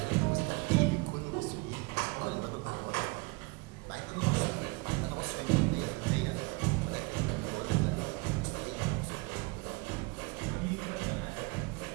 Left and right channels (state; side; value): quieter; left; 26.7 dB